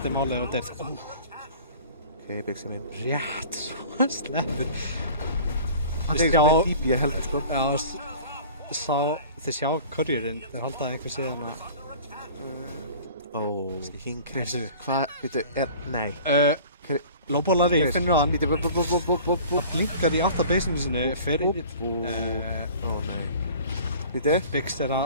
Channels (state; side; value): inverted; both; correlation -0.44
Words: máli ef þetta er... Ok, Biggsy minn. Rétt, svo sleppur. Hann tegist með típi, ég held, sko. Já, þið sjá courierinn, þeir halda einhver síðan að... King Chris, hvað, veitu, nei. Lóbólari, finnur hann. Það blinkar í aftabasinu sinni, fyrir... nei. Veitu? Biggs er